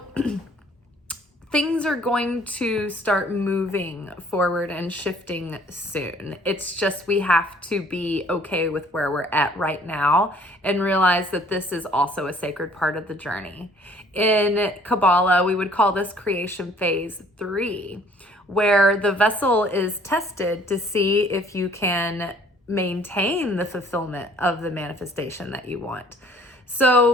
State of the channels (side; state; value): both; normal; correlation 0.57